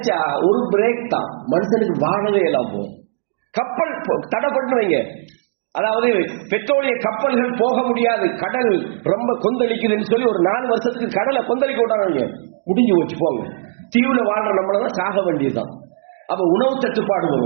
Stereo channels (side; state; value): left; silent; digital silence